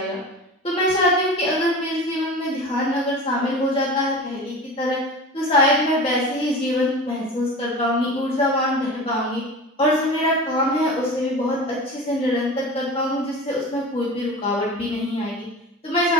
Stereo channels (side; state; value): both; normal; correlation 0.34